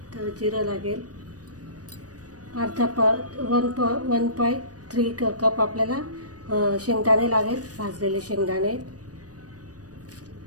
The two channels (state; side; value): late; left; 0.68 ms